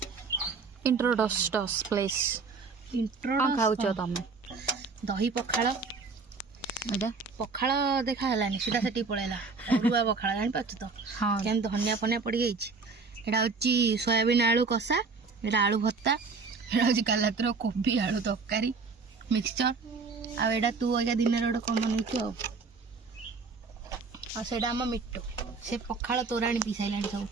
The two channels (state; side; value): quieter; left; 4.5 dB